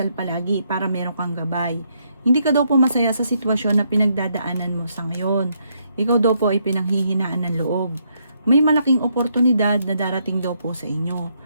palagi para meron kang gabay. Hindi ka daw po masaya sa sitwasyon na pinagdadaanan mo sa ngayon. Ikaw daw po ay pinanghihinaan ng loob. May malaking oportunidad na darating daw po sa inyo.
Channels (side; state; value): both; inverted; correlation -0.75